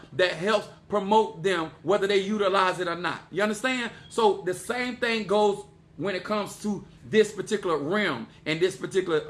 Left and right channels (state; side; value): identical; both; correlation 1.00